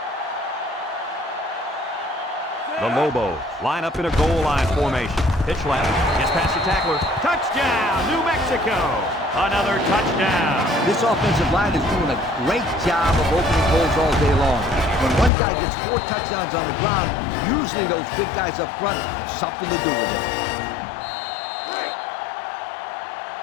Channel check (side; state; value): right; drops out; at 15.3 s